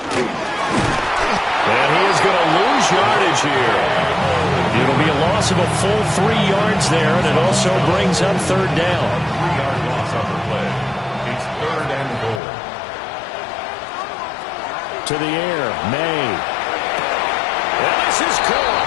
And he is going to lose yardage here. It'll be a loss of a full 3 yards there, and it also brings up 3rd down. 3-yard loss on the play. It's 3rd and goal. To the air, May. And this is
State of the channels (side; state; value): right; drops out; at 12.4 s